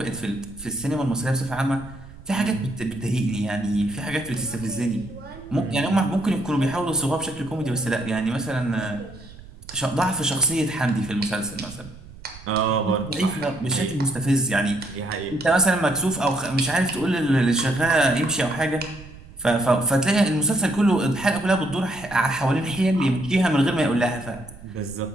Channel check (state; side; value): noise; right; rumble, 19 dB below the sound